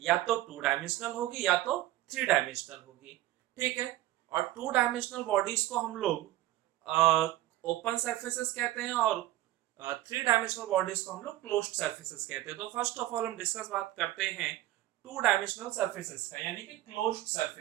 या तो टू डायमेंशनल होगी या तो थ्री डायमेंशनल होगी। ठीक है। और टू डायमेंशनल बॉडीज को हम लोग ओपन सरफेसेस कहते हैं, और थ्री डायमेंशनल बॉडीज को हम लोग क्लोज्ड सरफेसेस कहते हैं। तो फर्स्ट ऑफ ऑल हम डिस्कस बात करते हैं टू डायमेंशनल सरफेसेस का, यानी कि क्लोज्ड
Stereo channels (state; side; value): quieter; left; 15.6 dB